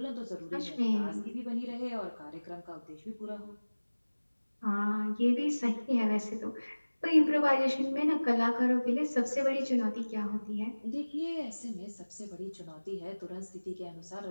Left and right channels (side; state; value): both; inverted; correlation -1.00